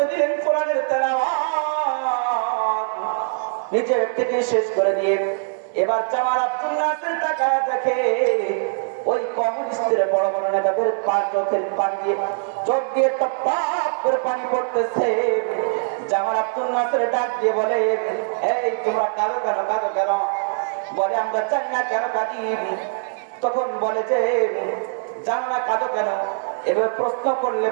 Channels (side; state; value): left; silent; digital silence